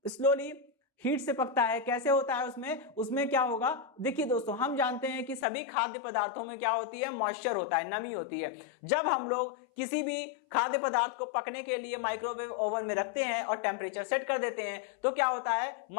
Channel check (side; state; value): right; drops out; at 5.5 s